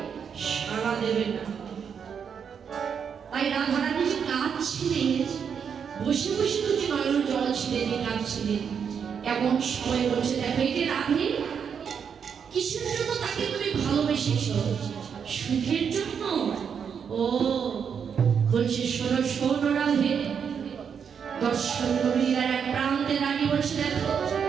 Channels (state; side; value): quieter; left; 7.1 dB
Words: সাড়া দেবে না। তাই রাধারানী যে কাঁদছিলেন, বসে বসে দুটি নয়ন জল ছিলেন, কাঁদছিলেন, এমন সময় বলছে, দেখো এই যে রাধে, কিসের জন্য তাকে তুমি ভালোবেসেছ? সুখের জন্য? ও বলছে, শোনো শোনো রাধে, দর্শন করিলার এক প্রান্তে রানী বলছে, দেখো